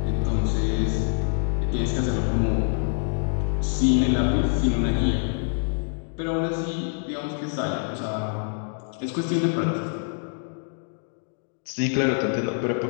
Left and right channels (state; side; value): silent; right; digital silence